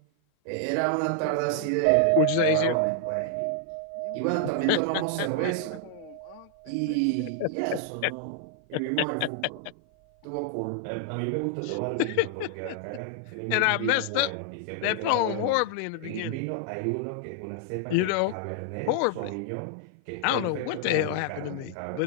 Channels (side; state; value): both; different; correlation 0.00